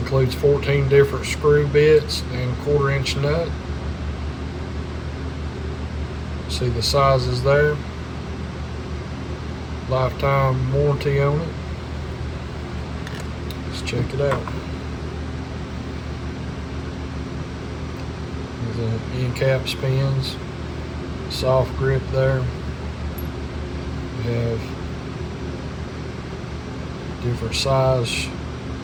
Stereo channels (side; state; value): both; identical; correlation 1.00